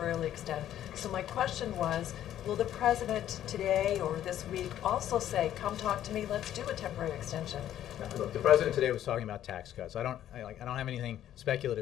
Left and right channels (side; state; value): right; quieter; 11.6 dB